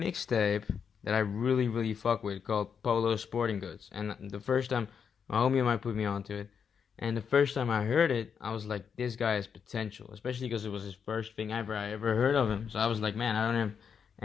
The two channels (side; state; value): right; quieter; 6.9 dB